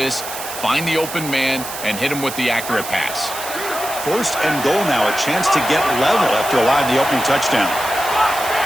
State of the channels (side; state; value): right; noise; hiss, 9 dB below the sound